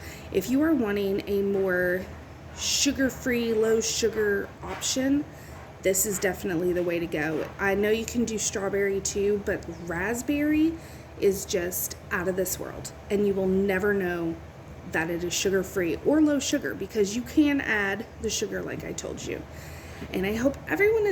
If you are wanting a more sugar-free, low sugar option, this is definitely the way to go. I know you can do strawberry too, but raspberry is just out of this world, and you will never know that it is sugar-free or low sugar because you can add the sugar like I told you. And I hope everyone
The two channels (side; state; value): both; identical; correlation 1.00